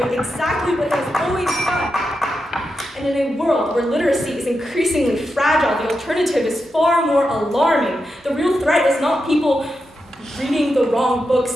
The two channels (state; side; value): normal; both; correlation 0.87